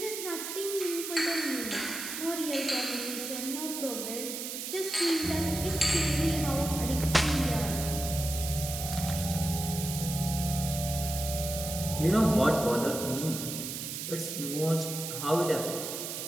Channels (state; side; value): noise; right; hiss, 6 dB below the sound